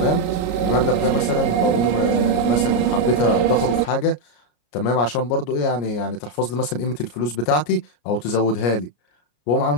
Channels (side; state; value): right; late; 33 ms